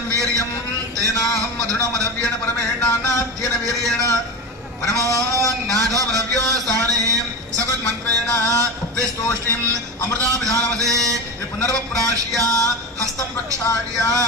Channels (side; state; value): both; normal; correlation 0.24